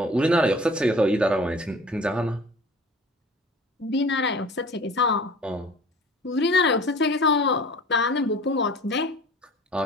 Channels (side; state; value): both; normal; correlation 0.44